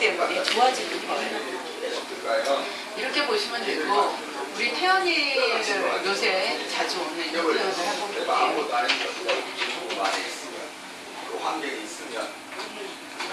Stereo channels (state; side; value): identical; both; correlation 1.00